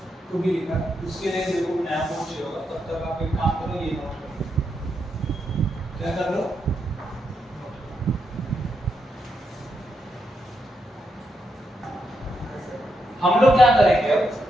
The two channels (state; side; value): normal; both; correlation 0.82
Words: को भी लिखा, उसके लिए देखो नया नोट चाहिए होगा, तब तक आप एक काम करो, ये नोट करो, क्या कर लो, हम लोग क्या करेंगे अब,